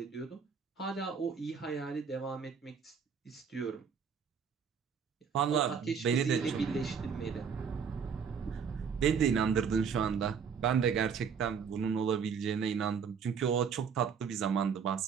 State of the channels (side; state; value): left; quieter; 6.6 dB